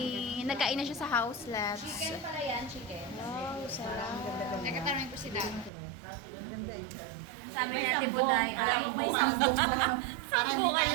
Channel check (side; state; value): left; drops out; at 5.7 s